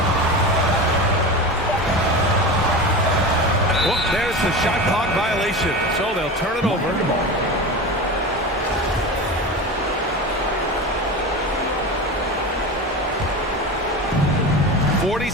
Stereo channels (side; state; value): both; normal; correlation 0.27